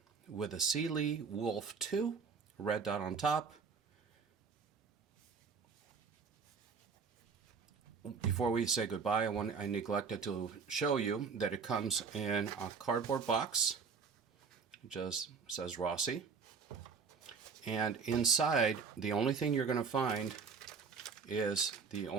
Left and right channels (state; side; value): quieter; left; 5.5 dB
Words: with a CyeLee Wolf 2, red dot on top. Before we say goodbye, I neglected to show you that it comes in a cardboard box. It just says Rossi. And inside, the only thing you're going to find is the